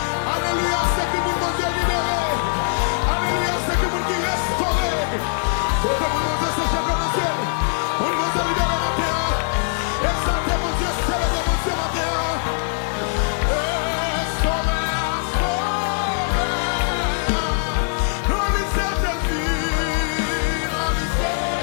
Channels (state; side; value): silent; right; 64 dB below the other